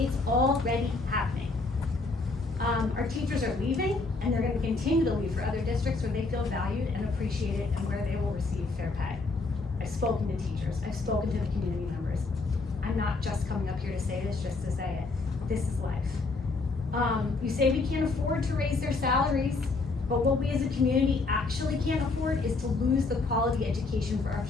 already happening. Our teachers are leaving, and they're gonna continue to leave for other districts where they feel valued and appreciated and where they will receive fair pay. I've spoken to teachers, I've spoken to the community members. I'm not just coming up here to say this just to say it. This is life. You say we can't afford to raise their salaries, but what we as a community actually can't afford is to lose the quality education for our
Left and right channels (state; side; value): quieter; right; 3.7 dB